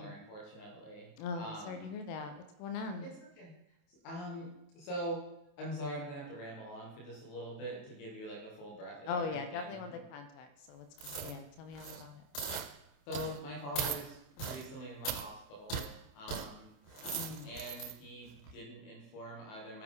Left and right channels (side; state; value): right; late; 28 ms